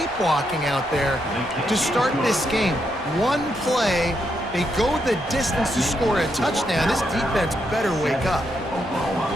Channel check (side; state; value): both; normal; correlation 0.80